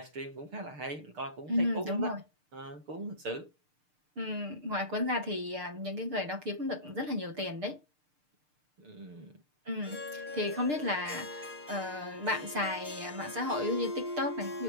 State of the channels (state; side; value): late; left; 6.7 ms